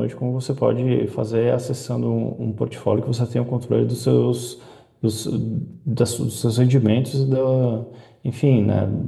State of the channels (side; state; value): both; identical; correlation 1.00